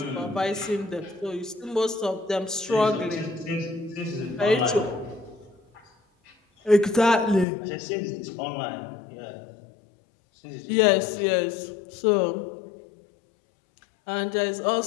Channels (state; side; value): drops out; right; at 7.5 s